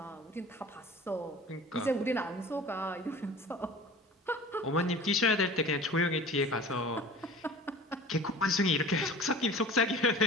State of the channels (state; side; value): normal; both; correlation 0.41